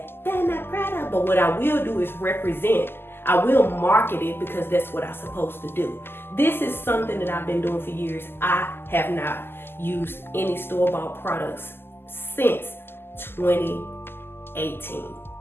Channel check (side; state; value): right; late; 0.11 ms